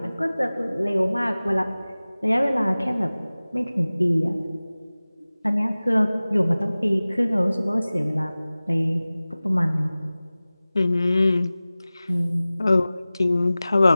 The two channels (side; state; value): both; inverted; correlation -0.98